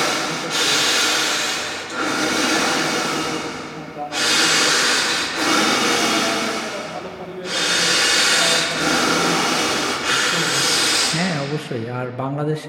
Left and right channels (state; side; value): identical; both; correlation 1.00